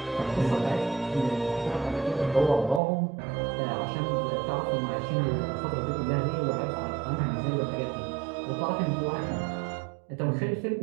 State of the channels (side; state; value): left; drops out; at 2.8 s